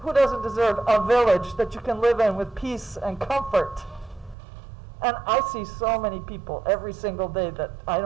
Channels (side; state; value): left; drops out; at 4.4 s